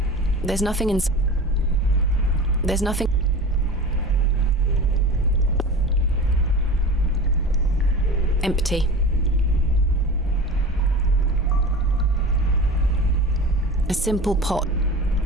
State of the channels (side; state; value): both; normal; correlation 0.33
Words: There's nothing in... There's nothing... Empty. A simple pot.